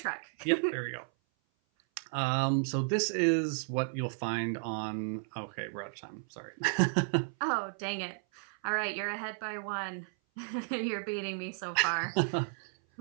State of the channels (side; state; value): left; silent; 56 dB below the other